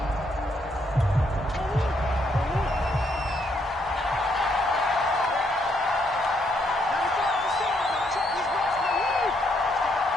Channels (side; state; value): both; normal; correlation 0.74